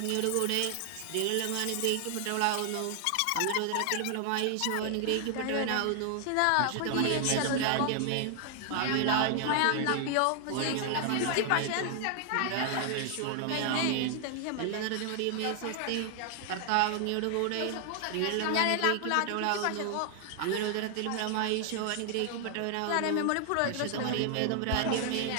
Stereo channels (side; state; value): both; different; correlation 0.00